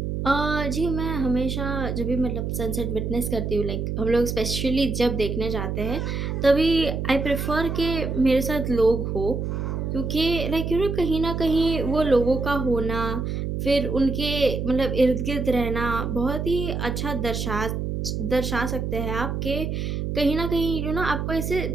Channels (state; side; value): noise; right; hum, 2 dB below the sound